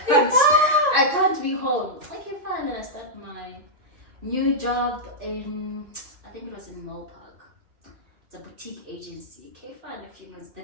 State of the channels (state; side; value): late; left; 2.5 ms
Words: can't be home. Okay, fine. Then I started my new job in, I think it was in Mall Park. It's a boutique agency. Okay, fine. A few months.